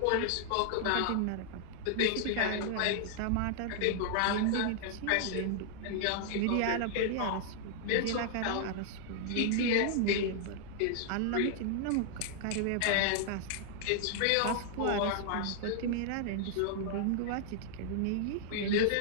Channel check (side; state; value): both; different; correlation 0.00